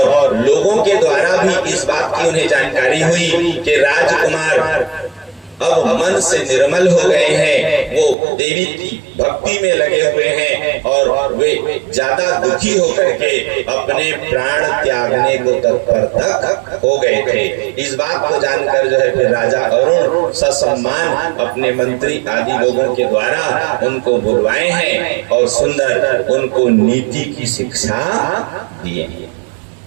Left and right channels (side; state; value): left; drops out; at 8.2 s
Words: लोगों के द्वारा भी इस बात की उन्हें जानकारी हुई कि राजकुमार अब मन से निर्मल हो गए हैं, वो देवी की भक्ति में लगे हुए हैं और वे ज्यादा दुखी होकर के अपने प्राण त्यागने को तत्पर तक हो गए थे। इस बात को जानकर जो है फिर राजा अरुण ससम्मान अपने मंत्री आदि लोगों के द्वारा उनको बुलवाए हैं और सुंदर उनको नीति की शिक्षा दिए हैं।